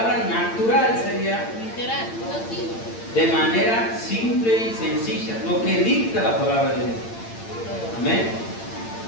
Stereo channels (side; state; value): right; late; 8.8 ms